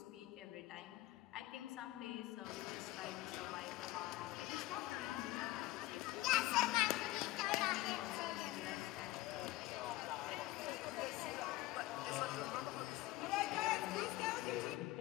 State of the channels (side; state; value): right; quieter; 17.7 dB